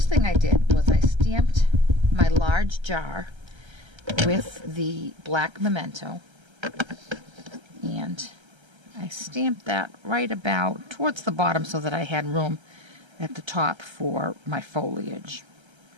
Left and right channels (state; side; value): late; left; 1.3 ms